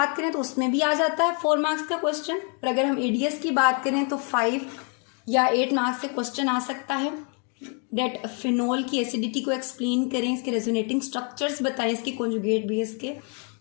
करें तो उसमें भी आ जाता है 4 मार्क्स का क्वेश्चन, और अगर हम एडीएस की बात करें तो 5 या 8 मार्क्स से क्वेश्चन आ सकता है। डेट फिनोल की एसिडिटी को एक्सप्लेन करें, इसके रेजोनेटिंग स्ट्रक्चर्स बताएं इसके कॉन्जुगेट बेस के।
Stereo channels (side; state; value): right; quieter; 39.3 dB